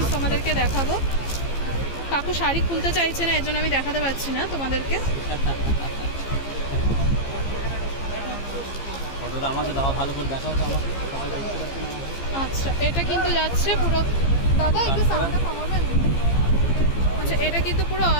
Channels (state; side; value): late; right; 15 ms